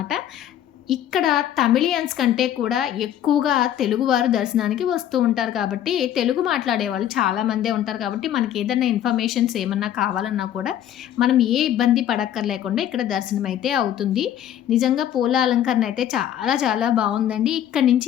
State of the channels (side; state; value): right; quieter; 10.9 dB